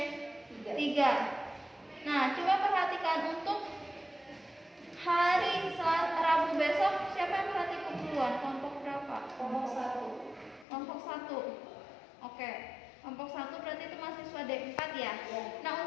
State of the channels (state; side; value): drops out; right; at 10.7 s